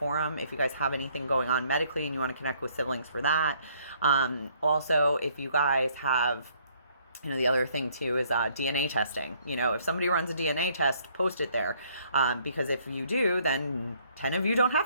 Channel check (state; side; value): inverted; both; correlation -0.65